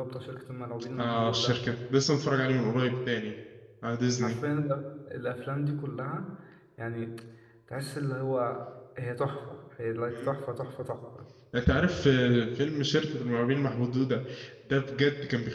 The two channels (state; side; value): identical; both; correlation 1.00